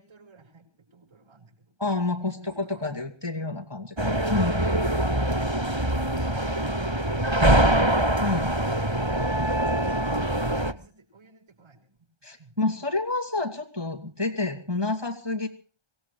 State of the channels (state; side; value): late; left; 1.3 ms